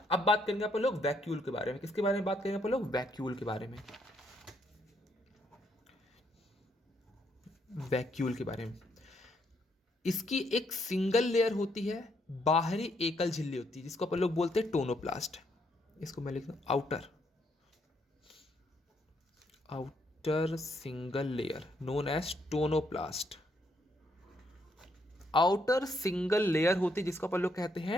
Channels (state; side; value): normal; both; correlation 0.73